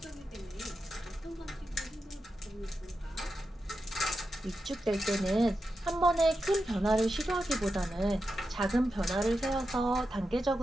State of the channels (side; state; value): both; normal; correlation 0.89